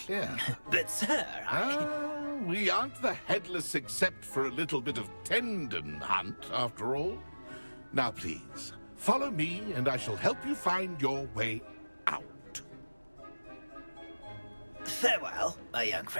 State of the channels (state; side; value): inverted; both; correlation -1.00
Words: But, sir, we aren't the headless except for a little bit of tendon hunt, after all. Now, please, follow me, and I shall help you find your way out. Farewell, my young